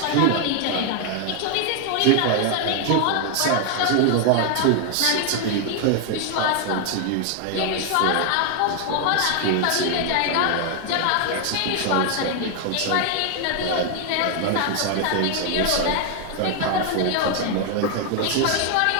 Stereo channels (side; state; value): both; different; correlation 0.00